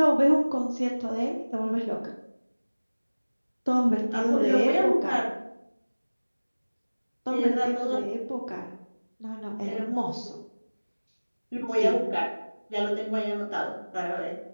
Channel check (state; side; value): inverted; both; correlation -1.00